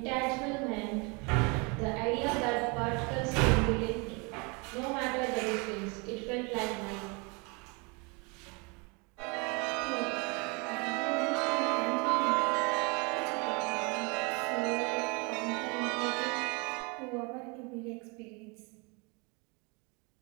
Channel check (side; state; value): left; quieter; 30.5 dB